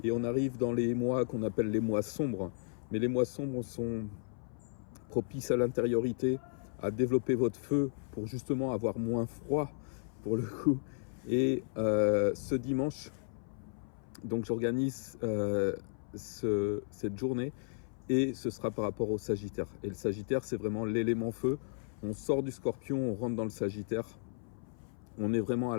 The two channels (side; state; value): right; silent; 55 dB below the other